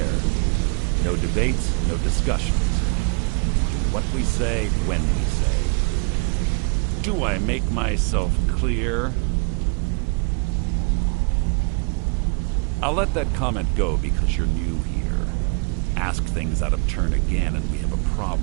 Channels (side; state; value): left; quieter; 33.5 dB